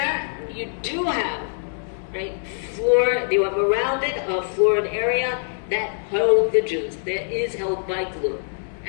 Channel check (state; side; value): silent; right; digital silence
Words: you do have floor. You have around it a floored area that held the Jews. That is held by glue,